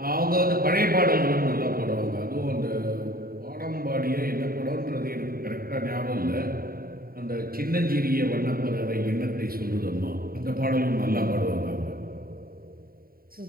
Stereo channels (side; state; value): left; late; 0.43 ms